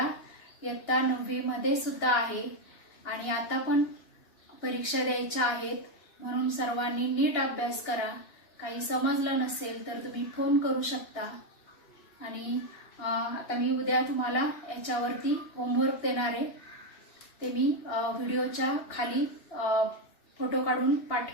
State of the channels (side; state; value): right; late; 2.9 ms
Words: इयत्ता 9वी मध्ये सुद्धा आहे आणि आता पण परीक्षा द्यायच्या आहेत, म्हणून सर्वांनी नीट अभ्यास करा. काही समजलं नसेल तर तुम्ही फोन करू शकता. आणि आता मी उद्या तुम्हाला याच्यावरती होमवर्क देणार आहे, ते मी व्हिडिओच्या खाली फोटो काढून